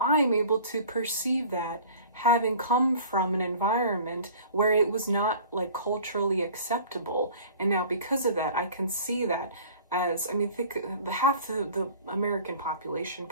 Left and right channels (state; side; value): inverted; both; correlation -0.45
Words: I'm able to perceive that having come from an environment where it was not like culturally acceptable. And now because of that, I can see that as, I mean, think half the American population,